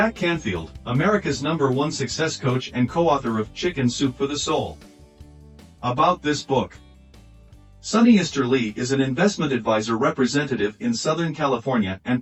Canfield, America's #1 success coach and co-author of Chicken Soup for the Soul. About this book. Sunny Easter Lee is an investment advisor representative in Southern California and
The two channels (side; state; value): both; identical; correlation 1.00